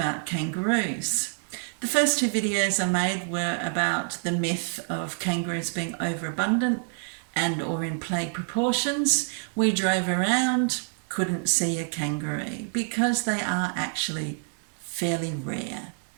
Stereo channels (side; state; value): left; silent; 60 dB below the other